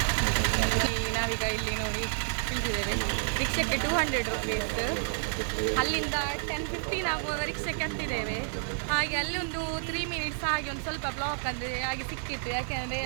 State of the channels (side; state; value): left; silent; 58 dB below the other